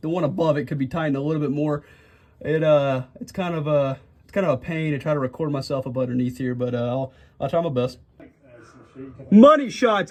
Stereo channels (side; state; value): both; identical; correlation 1.00